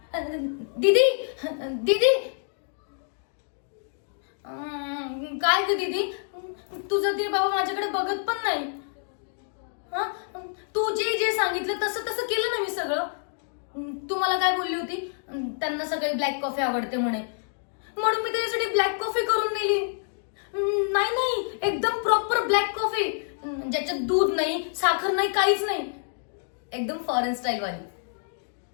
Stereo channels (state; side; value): silent; right; digital silence